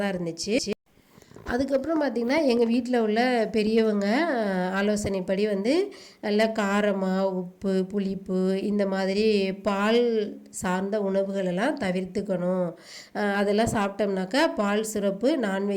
இருந்துச்சு. அதுக்கப்புறம் பார்த்திங்கன்னா எங்கள் வீட்டில் உள்ள பெரியவங்க ஆலோசனைப்படி வந்து நல்லா காரமாக உப்பு புளிப்பு இந்த மாதிரி பால் சார்ந்த உணவுகளெல்லாம் தவிர்த்துக்கணும். அதெல்லாம் சாப்பிட்டோம்னாக்கா பால் சிறப்பு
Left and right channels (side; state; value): both; identical; correlation 1.00